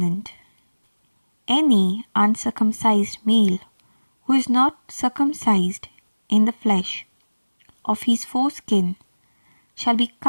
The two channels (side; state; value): both; inverted; correlation -1.00